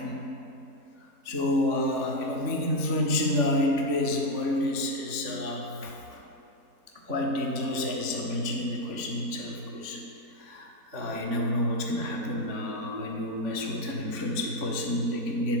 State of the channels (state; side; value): late; left; 3.6 ms